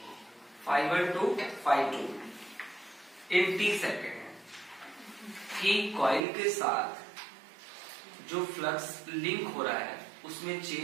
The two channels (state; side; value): drops out; left; at 6.2 s